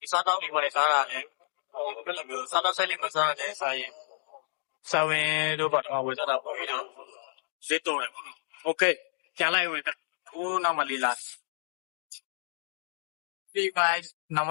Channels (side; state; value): right; silent; digital silence